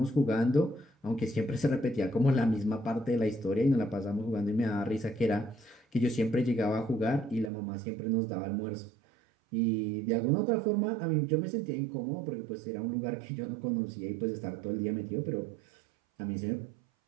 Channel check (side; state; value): left; drops out; at 7.5 s